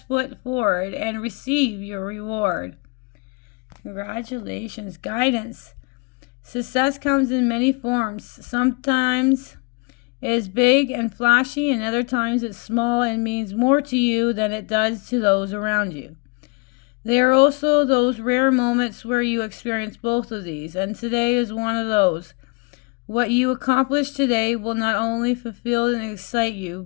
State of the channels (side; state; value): right; quieter; 31.2 dB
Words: foot forward and receive your reward. Congratulations. Guidance. Success comes in many forms. Sometimes it is big and flashy, and other times it's small and means more to you than it does to those around you. There are also those rare moments where you experience both of these, and today is one of those. What you accomplish today will not only fulfill and excite you,